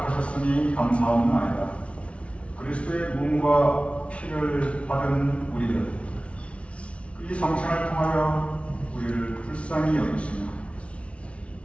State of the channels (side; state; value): right; late; 0.062 ms